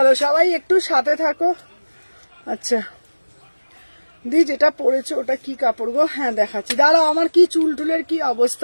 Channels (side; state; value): both; inverted; correlation -1.00